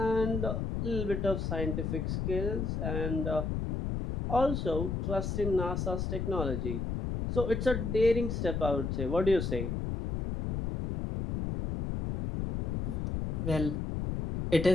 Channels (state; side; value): noise; left; rumble, 2 dB below the sound